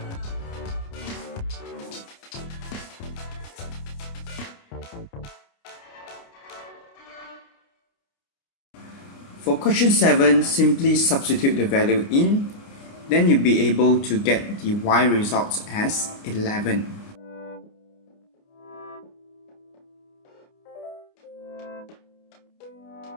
For question 7, simply substitute the value in, then you'll be able to get the y results as 11.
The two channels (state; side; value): late; right; 29 ms